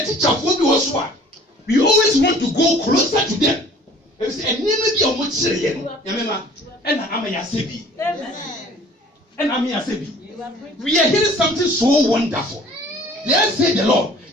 teacher will be also. We always want to go closer to them. And never be a much say, and I'm a Yasebi. And I'm a Yasebi. We are hearing something so wonderful. Let's say the Lord,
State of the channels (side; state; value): both; normal; correlation 0.50